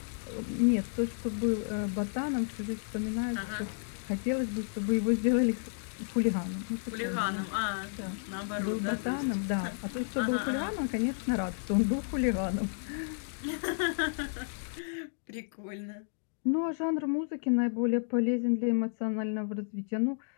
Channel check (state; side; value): silent; right; digital silence